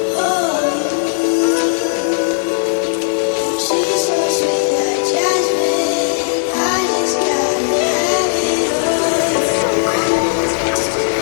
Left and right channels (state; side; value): silent; right; digital silence